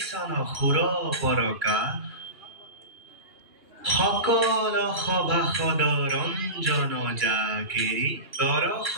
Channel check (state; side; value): late; left; 2.8 ms